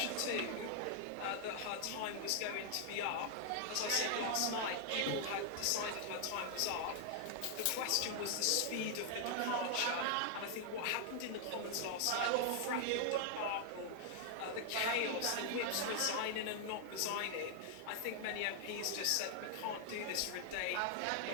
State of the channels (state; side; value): different; both; correlation 0.00